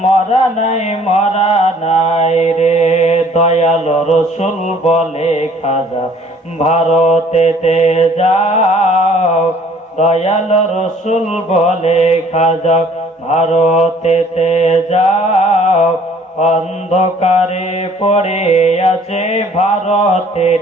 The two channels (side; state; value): both; normal; correlation 0.56